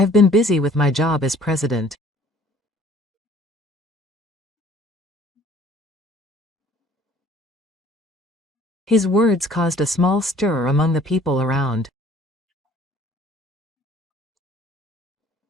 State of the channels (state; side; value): normal; both; correlation 0.54